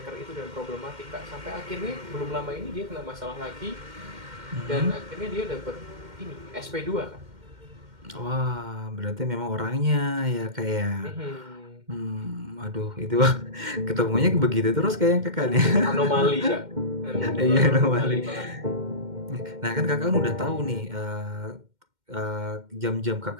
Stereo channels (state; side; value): late; left; 2.1 ms